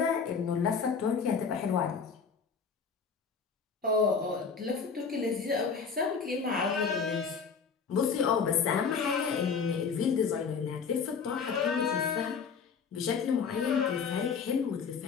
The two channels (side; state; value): right; quieter; 5.8 dB